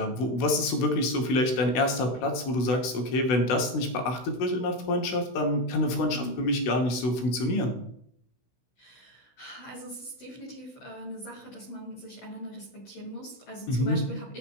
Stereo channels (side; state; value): right; late; 16 ms